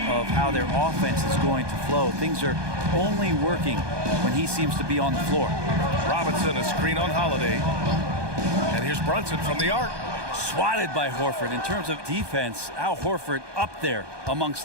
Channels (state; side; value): late; left; 1.2 ms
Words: how their offense is going to flow. Things are only working when he seems to be on the floor. Robinson, a screen on Holiday. And here's Brunson from the arc. Swatted by Horford. In terms of defense, Al Horford up there amongst